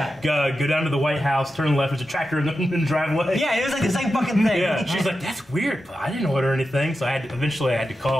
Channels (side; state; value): both; normal; correlation 0.90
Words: Go down to the White House, turn left. There's a tractor in the driveway. Yeah, it was like the same fucking thing. Yeah. She's like, that's weird, but I didn't order anything. So eventually I had to